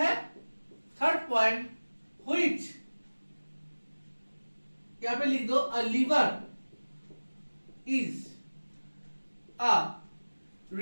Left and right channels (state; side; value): inverted; both; correlation -1.00